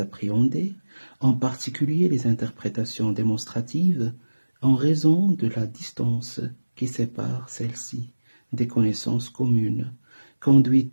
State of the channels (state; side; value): inverted; both; correlation -1.00